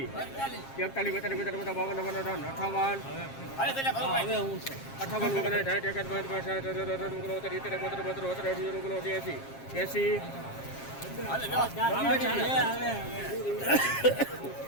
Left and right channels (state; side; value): late; right; 7.4 ms